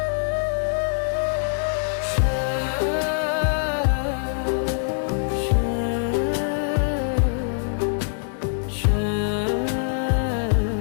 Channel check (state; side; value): silent; right; digital silence